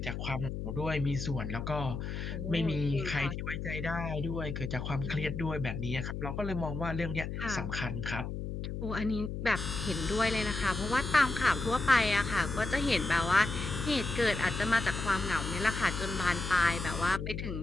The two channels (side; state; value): left; noise; hum, 5 dB below the sound